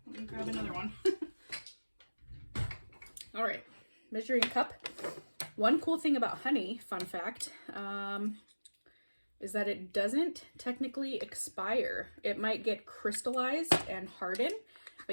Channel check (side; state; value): both; inverted; correlation -1.00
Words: Let me grab another one. All right, measuring cup. One cool thing about honey, fun fact, is that it doesn't technically expire. It might get crystallized and harden,